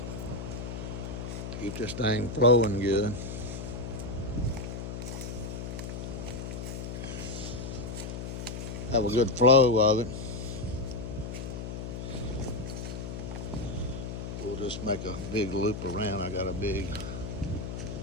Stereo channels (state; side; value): noise; left; hum, 6 dB below the sound